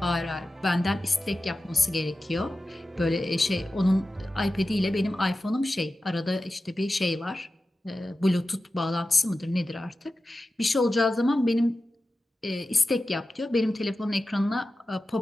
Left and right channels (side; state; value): both; normal; correlation 0.94